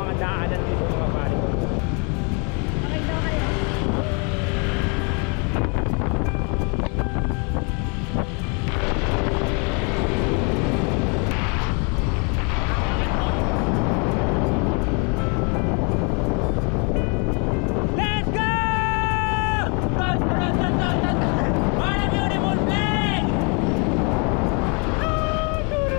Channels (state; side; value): quieter; right; 34.5 dB